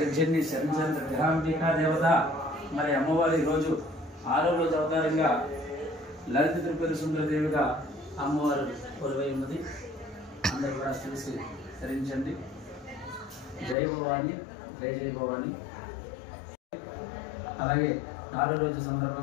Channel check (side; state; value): right; drops out; at 13.8 s